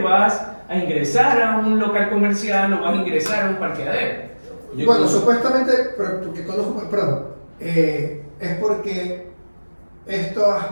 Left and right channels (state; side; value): inverted; both; correlation -1.00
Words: a ingresar a un local comercial o vas a ingresar a un parqueadero. Bueno, supuestamente, porque conozco, perdón, es porque estas